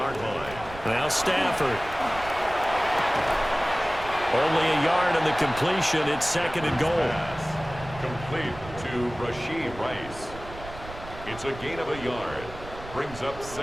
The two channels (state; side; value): noise; right; rumble, 14 dB below the sound